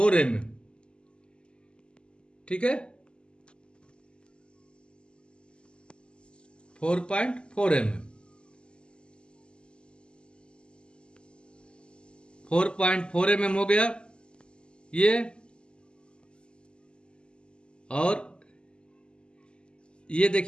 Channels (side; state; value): right; late; 0.050 ms